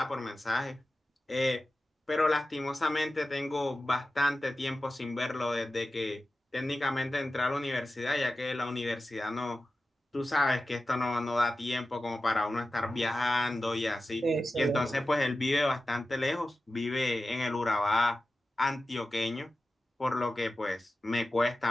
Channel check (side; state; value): both; normal; correlation 0.94